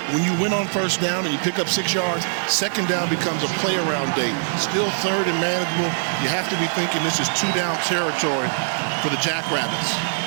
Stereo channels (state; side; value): silent; left; digital silence